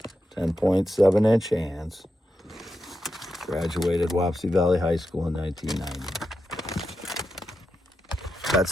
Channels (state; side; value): normal; both; correlation 0.88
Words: 10.7-inch hands. Graduated Wapsie Valley High School in 1990.